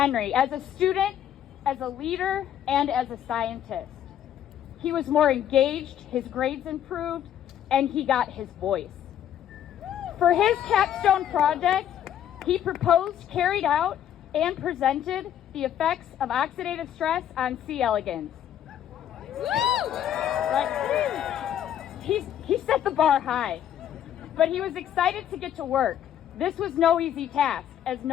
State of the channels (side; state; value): right; quieter; 10.4 dB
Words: as a student, as a leader, and as a scientist. He was more engaged, his grades improved, and he got his voice. For his capstone project, he proposed, carried out, and presented the effects of oxidative stress on C. elegans. Right? He set the bar high, but he was excited to get to work. This was no easy task, as